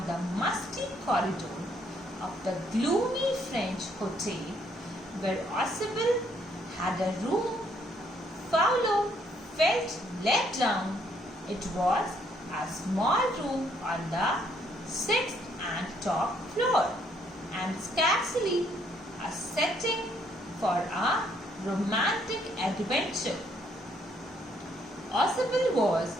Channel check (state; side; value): normal; both; correlation 0.69